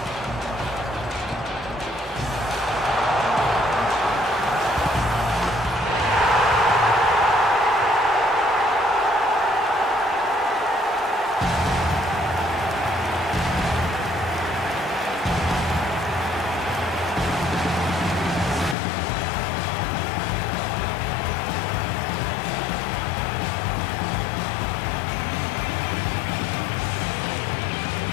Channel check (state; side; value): drops out; right; at 18.8 s